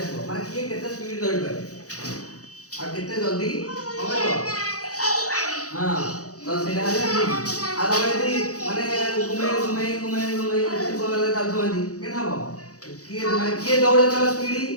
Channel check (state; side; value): late; right; 0.66 ms